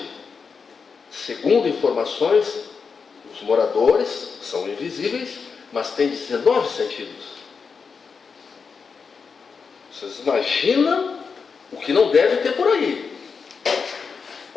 segundo informações, os moradores são invisíveis, mas têm 19 sentidos. Vocês imaginam o que não deve ter por aí,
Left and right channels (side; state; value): right; quieter; 5.5 dB